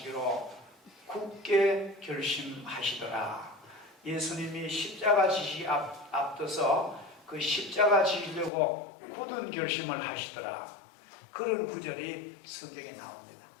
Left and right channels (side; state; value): right; drops out; at 8.5 s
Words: 굳게 결심하시더라. 예수님이 십자가 지시 앞둬서 그 십자가 지시려고 굳은 결심을 하시더라. 그런 구절이 성경에 나옵니다.